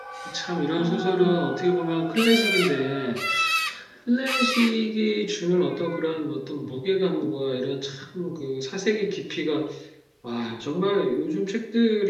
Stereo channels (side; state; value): both; identical; correlation 1.00